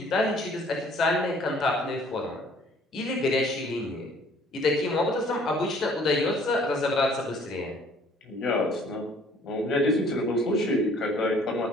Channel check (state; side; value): normal; both; correlation 0.57